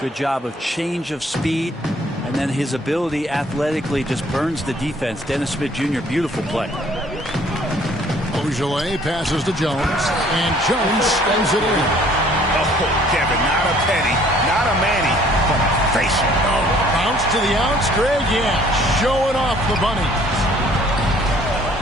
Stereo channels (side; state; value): both; normal; correlation 0.58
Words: job of change of speed. And then his ability athletically just burns the defense. Dennis Smith Jr., beautiful play. Ojeleye passes to Jones. And Jones spins it in. Oh, Kevin, not a penny, not a Manny, but a facial. Oh, bounce to the ounce, Greg. Yeah, showing off the bunny.